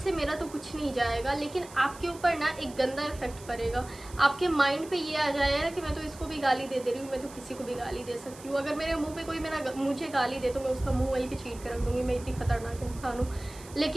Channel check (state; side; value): noise; right; hiss, 19 dB below the sound